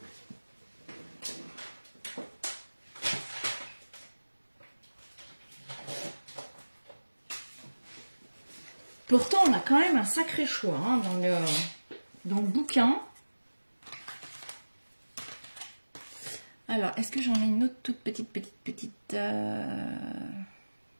Pourtant, on a quand même un sacré choix hein, dans le bouquin. Alors, est-ce que j'en ai une autre toute petite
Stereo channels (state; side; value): inverted; both; correlation -1.00